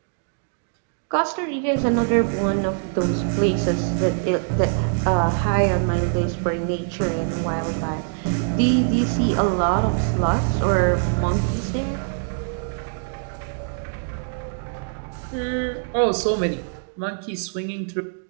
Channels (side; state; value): left; silent; digital silence